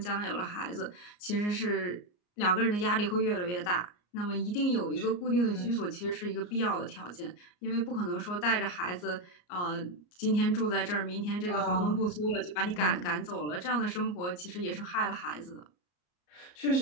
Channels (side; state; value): right; late; 34 ms